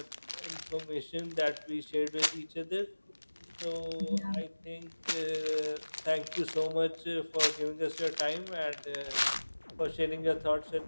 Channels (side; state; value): both; inverted; correlation -1.00